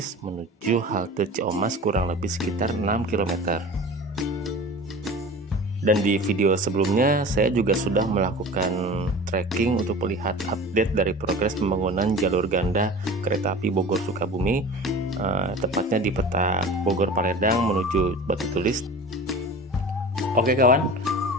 menuju halte Ciamas kurang lebih sekitar 6 km. Dan di video sebelumnya saya juga sudah melakukan trekking untuk melihat update dari progres pembangunan jalur ganda kereta api Bogor Sukabumi, tepatnya di peta Bogor Paledang menuju Batu Tulis. Oke kawan,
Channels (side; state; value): both; normal; correlation 0.37